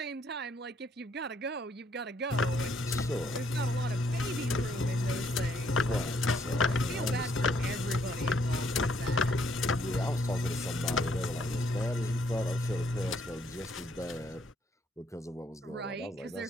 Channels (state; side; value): normal; both; correlation 0.69